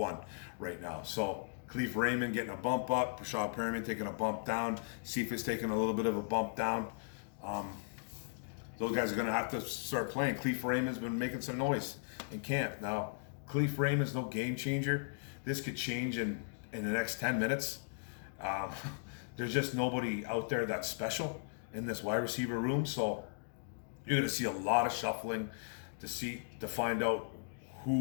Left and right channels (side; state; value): right; silent; digital silence